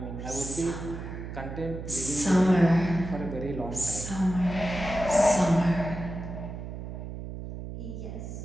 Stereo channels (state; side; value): noise; right; hum, 8 dB below the sound